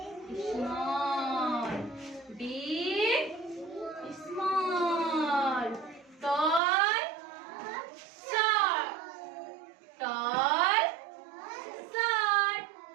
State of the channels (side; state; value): left; drops out; at 6.6 s